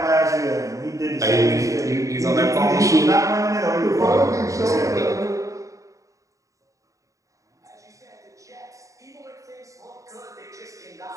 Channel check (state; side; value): late; left; 0.16 ms